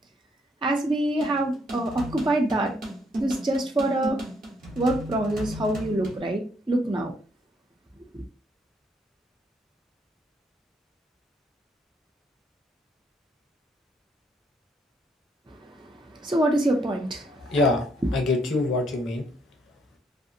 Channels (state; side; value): normal; both; correlation 0.71